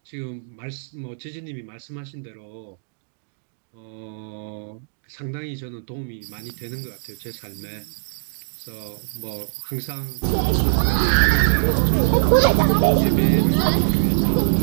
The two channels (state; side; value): silent; left; digital silence